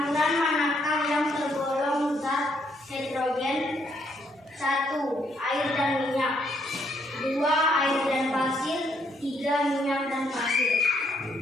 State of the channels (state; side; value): normal; both; correlation 0.72